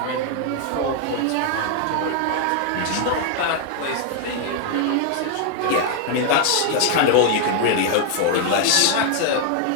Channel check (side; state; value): both; different; correlation 0.00